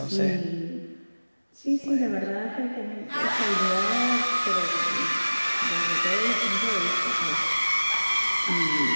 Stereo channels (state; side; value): inverted; both; correlation -1.00